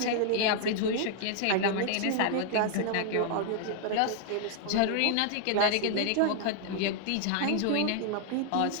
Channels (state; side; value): different; both; correlation 0.00